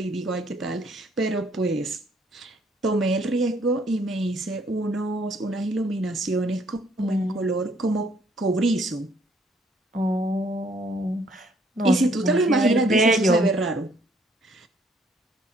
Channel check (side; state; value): both; normal; correlation 0.65